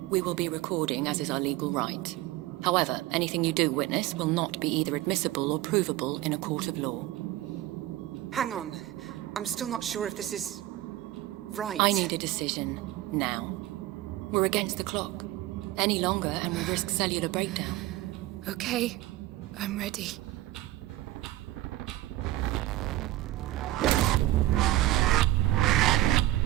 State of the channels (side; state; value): left; quieter; 16.2 dB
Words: we will be recording as is our legal right. However, anything you do witness will not be either admissible or provable in a court of law. Hang on. I'm still not sure if this is... right. I need a decision now. We're against the clock. Any longer and we risk cellular breakdown. Okay, I'm ready.